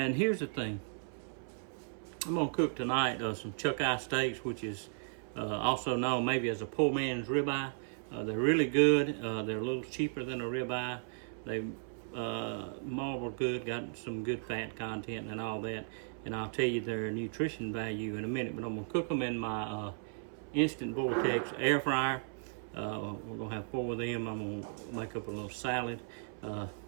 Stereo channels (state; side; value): silent; left; 54 dB below the other